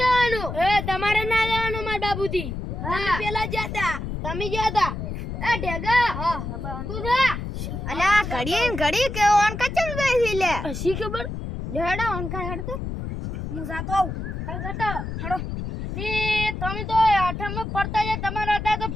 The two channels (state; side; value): noise; left; rumble, 6 dB below the sound